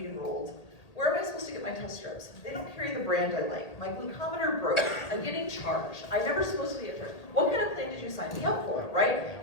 enrolled. Where am I supposed to get my test strips? They don't carry the brand I like. My glucometer broke. I'm getting charged. I'm never supposed to get charged. What kind of plan did you sign me up for, right?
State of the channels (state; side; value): late; right; 1.8 ms